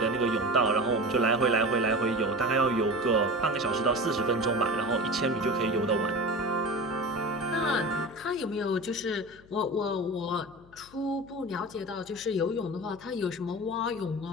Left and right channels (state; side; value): noise; left; hum, 25 dB below the sound